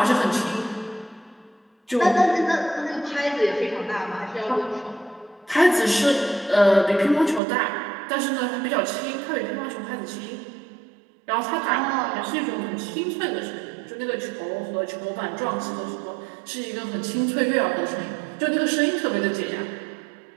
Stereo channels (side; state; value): left; drops out; at 7.4 s